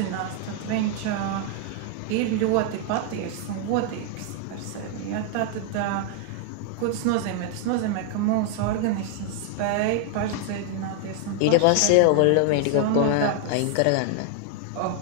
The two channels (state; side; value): different; both; correlation 0.00